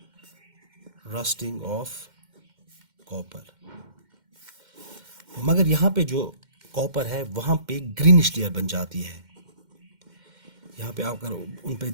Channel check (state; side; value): late; left; 2.1 ms